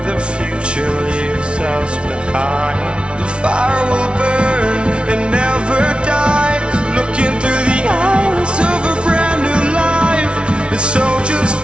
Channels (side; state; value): left; late; 0.058 ms